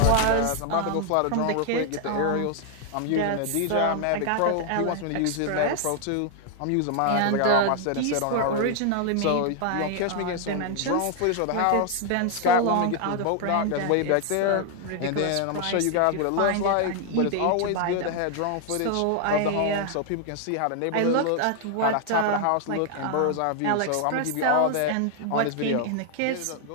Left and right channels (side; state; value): both; different; correlation 0.00